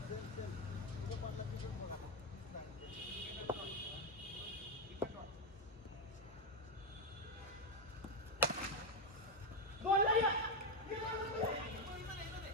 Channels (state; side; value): normal; both; correlation 0.07